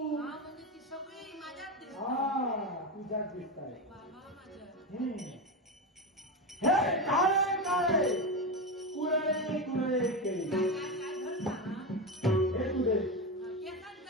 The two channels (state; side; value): normal; both; correlation 0.16